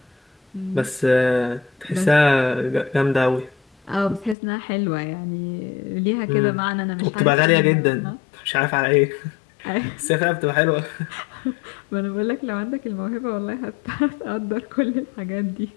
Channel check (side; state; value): right; drops out; at 4.4 s